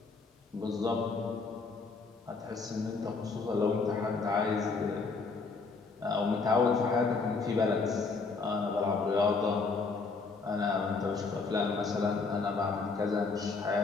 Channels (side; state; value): right; quieter; 4.4 dB